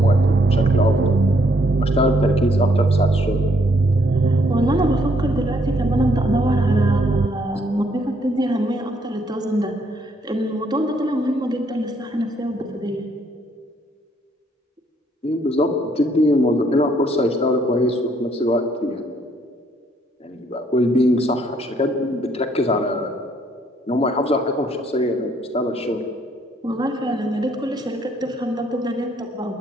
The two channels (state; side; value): normal; both; correlation 0.69